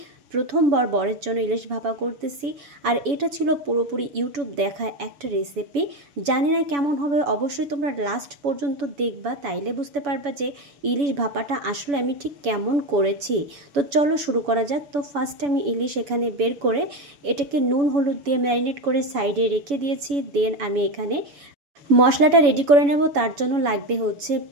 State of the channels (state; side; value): late; left; 7.0 ms